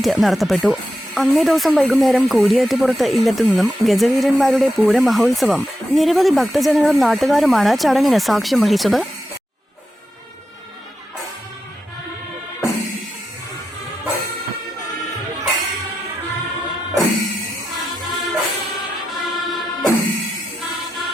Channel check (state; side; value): normal; both; correlation 0.88